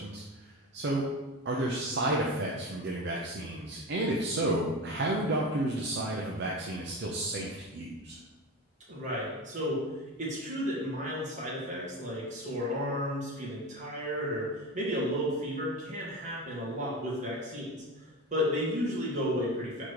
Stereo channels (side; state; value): both; normal; correlation 0.26